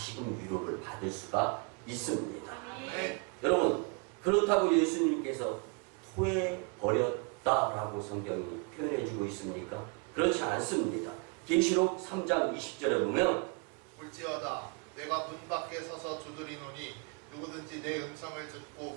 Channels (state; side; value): quieter; left; 33.6 dB